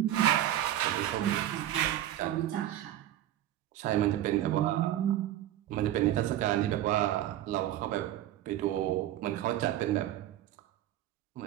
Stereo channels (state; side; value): quieter; left; 13.0 dB